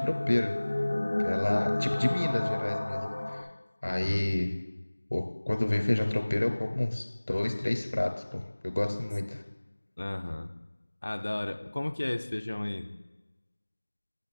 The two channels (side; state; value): both; inverted; correlation -1.00